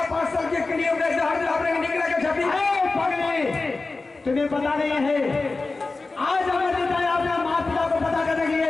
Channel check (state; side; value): quieter; right; 3.6 dB